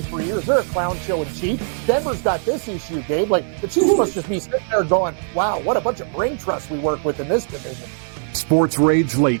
for years. They're a clown show in Chief. Denver's got this issue, Gabe. Like, the Chiefs must just be sitting there going, wow, what a bunch of brain trust we work with in this division. Sports Rage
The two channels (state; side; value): silent; left; digital silence